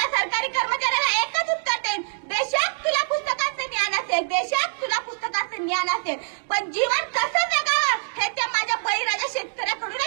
सरकारी कर्मचाऱ्याला एकच उत्तर देईन, बेशक तुला पुस्तकाचं ज्ञान असेल, बेशक तुला पुस्तकाचं ज्ञान असेल, पण जीवन कसं जगावं हे ते माझ्या बळीराजा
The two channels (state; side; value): silent; left; digital silence